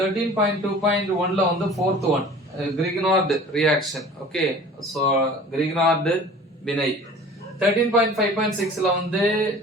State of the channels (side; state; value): both; normal; correlation 0.44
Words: வந்து fourth one Grignard reaction. Okay, so Grignard வினை. 13.5.6ல வந்து